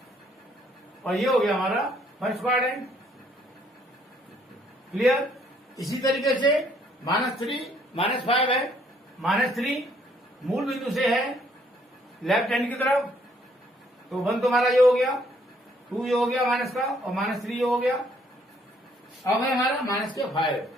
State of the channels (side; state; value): both; normal; correlation 0.66